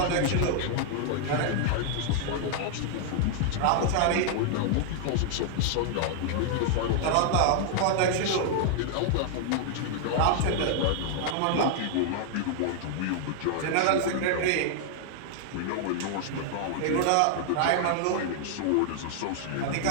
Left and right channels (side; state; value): both; different; correlation 0.00